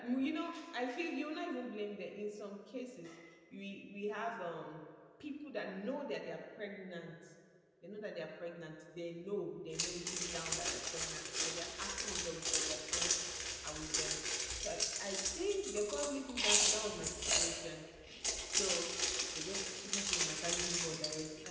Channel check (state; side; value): identical; both; correlation 1.00